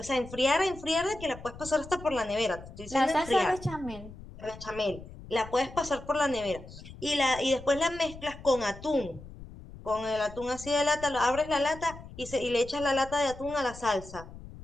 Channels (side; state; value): left; noise; rumble, 15 dB below the sound